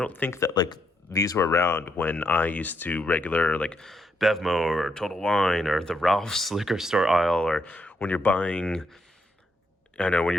think that like these were around when I used to regular like Bevmo or Total Wine or the Ralph's liquor store aisle, or when you're buying, I know, when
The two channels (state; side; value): normal; both; correlation 0.78